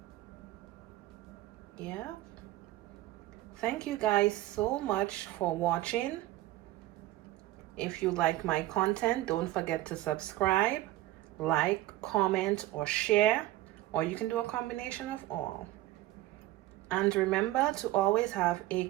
Yeah. Thank you guys so much for watching. If you like my content, don't forget to subscribe, like, comment, or share, or you can do a combination of all. And remember to always have a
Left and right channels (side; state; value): left; quieter; 16.2 dB